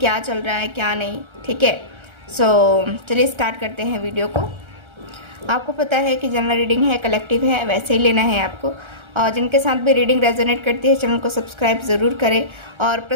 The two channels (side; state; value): left; late; 1.3 ms